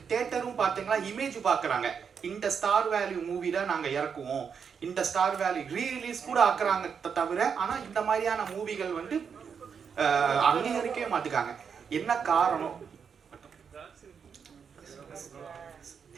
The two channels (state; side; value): quieter; left; 6.6 dB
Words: தியேட்டரும் பார்த்தீங்கன்னா இமேஜ் பார்க்குறாங்க, இந்த ஸ்டார் வேல்யூ மூவி தான் நாங்கள் இறக்குவோம், இந்த ஸ்டார் வேல்யூ ரீரிலீஸ் கூட ஆக்குறாங்க தவிர, ஆனால் இந்த மாதிரியான மூவிகள் வந்து அங்கீகரிக்கவே மாட்டுக்காங்க. என்ன காரணம்?